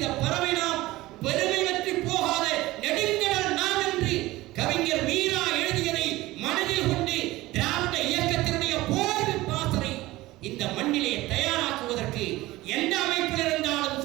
பறவை நாம், பெருமை பற்றி போகாத நெடுங்கடல் நாம் என்று கவிஞர் மீரா எழுதியதை மனதில் கொண்டு திராவிட இயக்கத்தினுடைய போர்வை பாசனை இந்த மண்ணிலே தயாராக்குவதற்கு எந்த அமைப்பில் இருந்தாலும்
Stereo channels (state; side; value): quieter; left; 18.4 dB